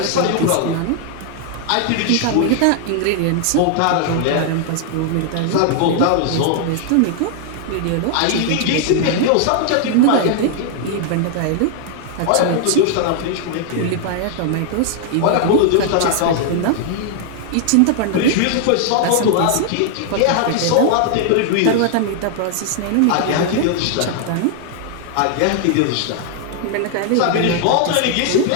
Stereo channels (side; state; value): both; different; correlation 0.00